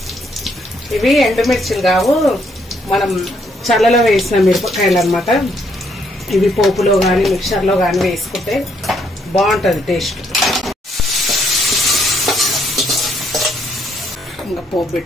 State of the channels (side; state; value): both; normal; correlation 0.71